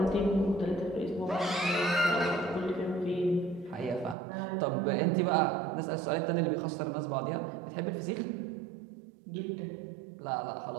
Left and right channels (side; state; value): left; drops out; at 4.2 s